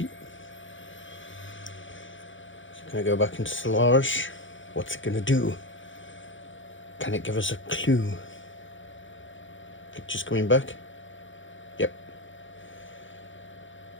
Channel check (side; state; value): right; late; 0.56 ms